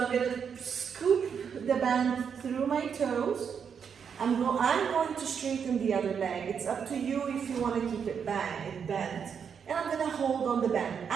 I'm going to scoop the band through my toes. I'm going to straighten the other leg. It's up to you if you want to keep it bent. And I'm going to hold on the band.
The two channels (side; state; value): left; quieter; 7.0 dB